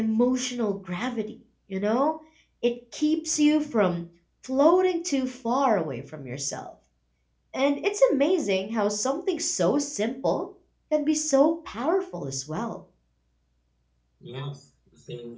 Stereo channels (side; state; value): both; identical; correlation 1.00